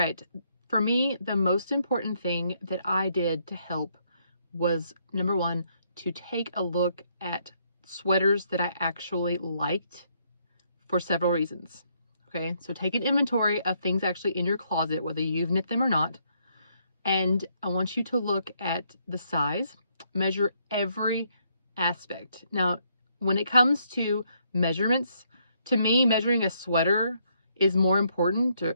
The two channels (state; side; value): inverted; both; correlation -0.72